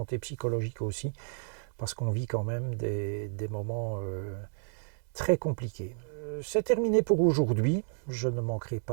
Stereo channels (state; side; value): silent; left; 57 dB below the other